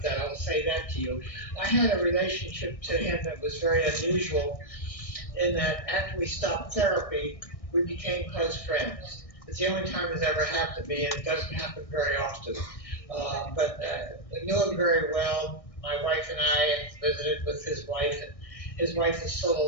that. I'll say that to you. I had a relationship to him that was very unusual in that after we stopped therapy, we became close friends. It's the only time it's ever happened to me, and it doesn't happen very often. But I knew him very well. My wife and I visited with his wife, and his wife is still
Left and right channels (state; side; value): late; right; 1.6 ms